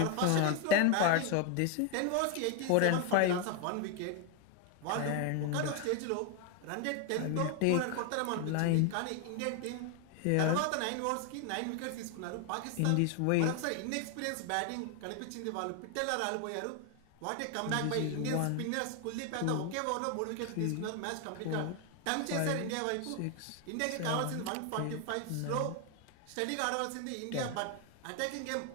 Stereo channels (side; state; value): both; different; correlation 0.01